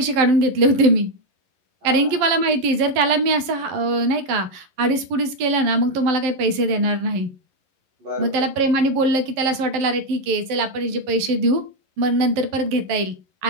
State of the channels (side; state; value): left; late; 11 ms